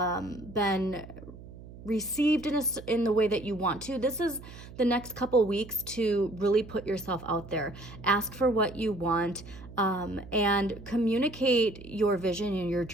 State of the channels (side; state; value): right; noise; hum, 16 dB below the sound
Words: been received in the way that you want to, this is the next couple weeks to really put yourself out there. Ask for what you want, and communicate your vision and your